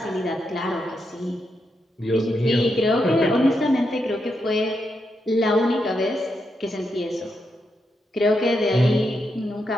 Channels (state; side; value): normal; both; correlation 0.83